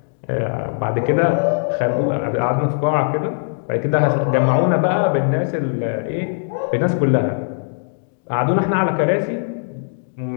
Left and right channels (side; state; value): right; silent; digital silence